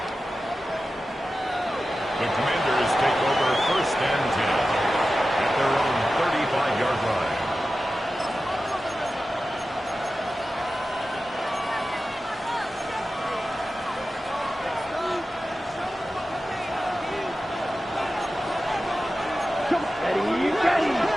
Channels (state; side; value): normal; both; correlation 0.94